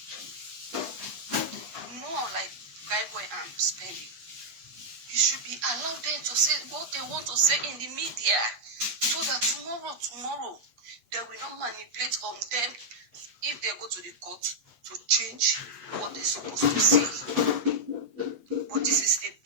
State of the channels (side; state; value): left; late; 8.0 ms